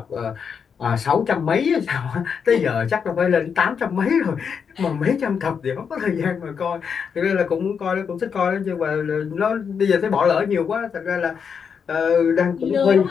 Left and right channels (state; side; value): quieter; right; 6.6 dB